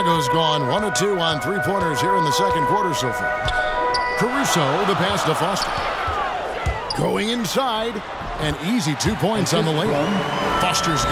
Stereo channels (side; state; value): both; identical; correlation 1.00